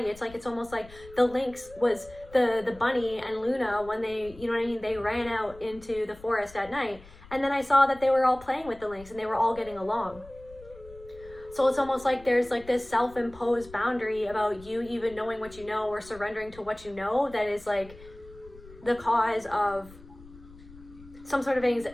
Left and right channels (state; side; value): noise; left; rumble, 20 dB below the sound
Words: It's almost like the Lynx was the bunny and Luna, when they, you know what I mean, they ran out into the forest at night, and then I saw that they were all playing with the Lynx and they were all getting along. So it's almost like there's like this self-imposed boundary about you even knowing what you know, or surrendering to what you know, that is like the cause of some sort of